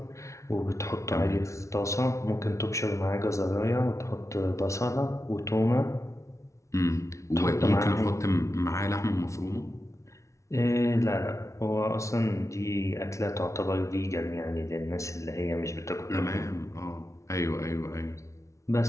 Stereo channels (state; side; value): late; right; 0.14 ms